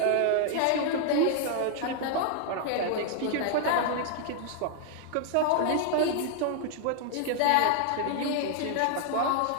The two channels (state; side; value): different; both; correlation 0.00